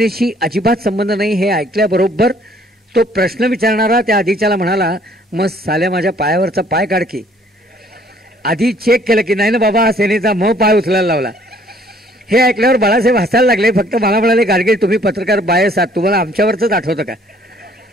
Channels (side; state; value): both; normal; correlation 0.60